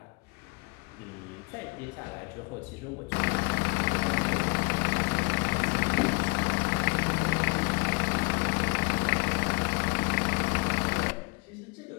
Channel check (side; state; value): right; quieter; 30.9 dB